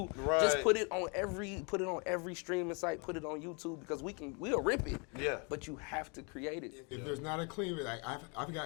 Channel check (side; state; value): right; quieter; 33.9 dB